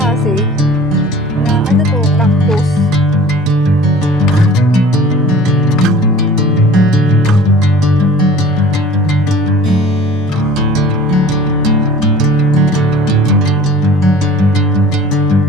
na ano to, cactus.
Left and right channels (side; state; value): both; normal; correlation 0.46